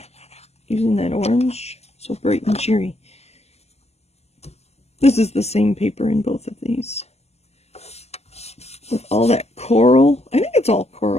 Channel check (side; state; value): right; late; 0.30 ms